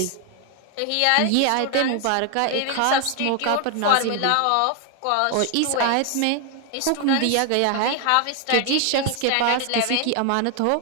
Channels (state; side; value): different; both; correlation 0.01